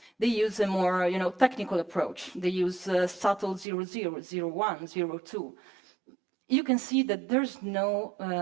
They use a more technical approach. They use subtle 00, 01, 02. You can see that there's no,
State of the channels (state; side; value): drops out; left; at 3.7 s